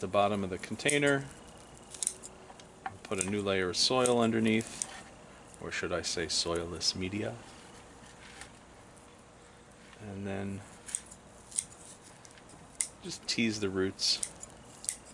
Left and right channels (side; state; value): both; identical; correlation 1.00